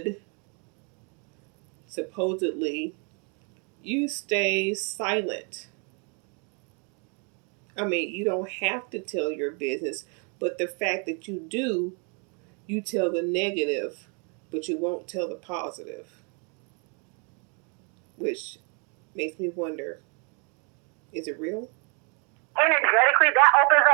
supposedly, you stay silent. I mean, you don't have to tell your business, but the fact that you do, you tell the negative, but you won't tell the positive. Which makes me wonder, is it real? Energetically, that opens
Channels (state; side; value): quieter; left; 36.4 dB